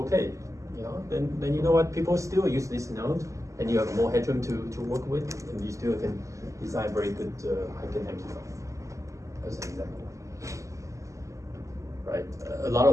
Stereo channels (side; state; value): left; late; 0.15 ms